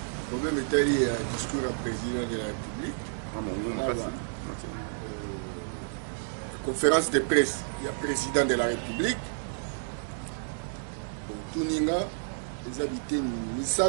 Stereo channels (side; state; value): left; silent; digital silence